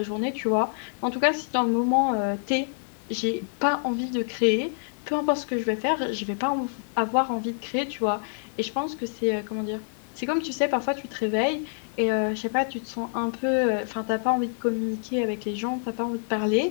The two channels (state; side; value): silent; right; 59 dB below the other